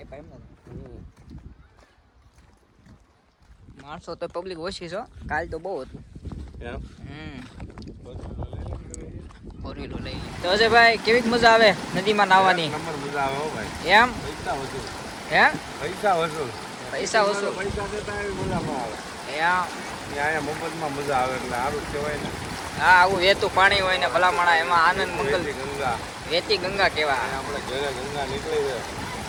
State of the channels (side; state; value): both; identical; correlation 1.00